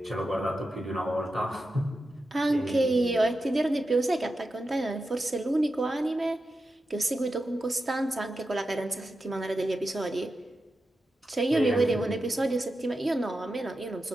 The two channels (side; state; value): both; normal; correlation 0.90